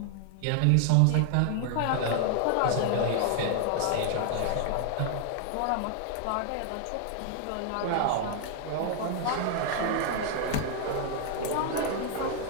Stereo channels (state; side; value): different; both; correlation 0.00